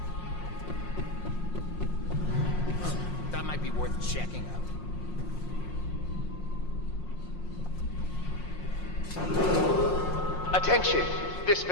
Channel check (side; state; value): right; late; 5.6 ms